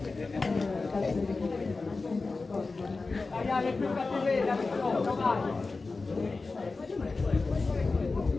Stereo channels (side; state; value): right; quieter; 3.8 dB